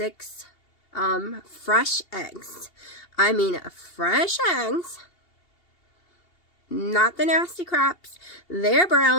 fresh eggs. I mean, fresh eggs. Not the nasty craps. They're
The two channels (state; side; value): late; right; 2.7 ms